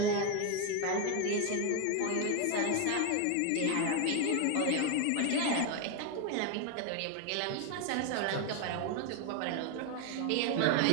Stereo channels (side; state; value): both; different; correlation 0.01